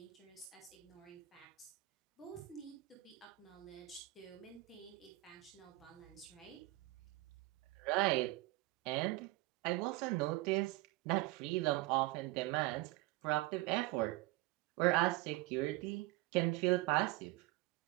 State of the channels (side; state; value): left; quieter; 19.6 dB